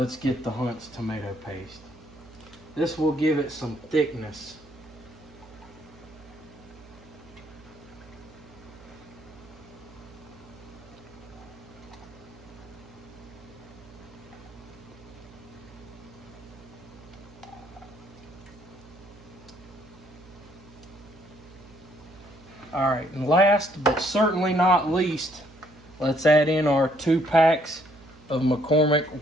get the Hunt's tomato paste. This will give it some thickness. All right, and last but certainly not least, let's add in our 2 packs of McCormick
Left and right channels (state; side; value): noise; right; hum, 22 dB below the sound